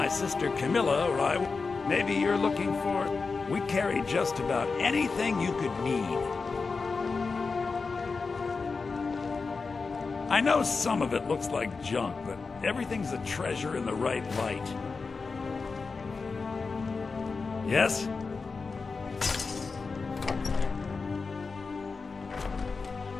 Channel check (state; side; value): quieter; right; 4.5 dB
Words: sister Camilla or I, maybe you're looking for... We carry just about anything you could need. I know some of it looks like junk, but everything's a treasure in the right light. Yes?